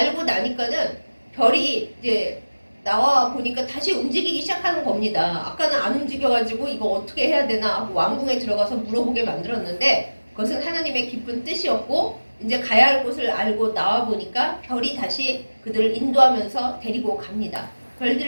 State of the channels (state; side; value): inverted; both; correlation -1.00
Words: 나니까는 별이 이제 나와 보니까 다시 움직이기 시작하는 겁니다. 아까는 안 움직여가지고 이거 어떻게 해야 되나 하고 왕궁에 들어가서 물어보게 만들었는데, 그것은 하나님의 깊은 뜻이었고, 이제 가야 할 곳을 알고 나와 보니까 별이 다시 그들을 인도하면서 데리고 갑니다.